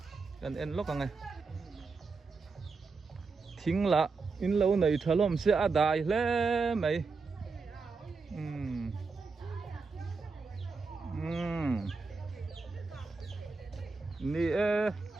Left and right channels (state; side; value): quieter; left; 4.4 dB